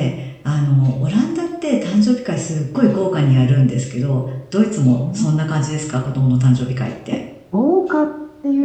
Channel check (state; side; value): identical; both; correlation 1.00